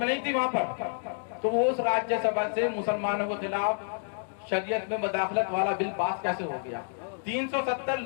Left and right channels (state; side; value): silent; right; digital silence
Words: नहीं थी वहां पर। तो वो उस राज्यसभा से मुसलमानों के खिलाफ शरीयत में मदाखलत वाला बिल पास कैसे हो गया? 370